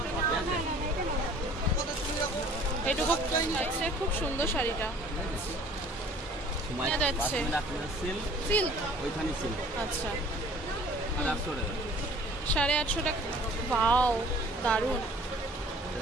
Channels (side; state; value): both; normal; correlation 0.51